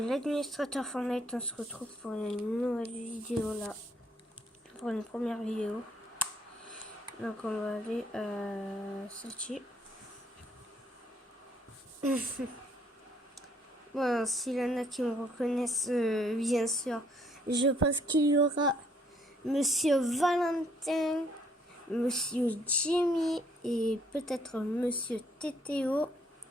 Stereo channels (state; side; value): normal; both; correlation 0.66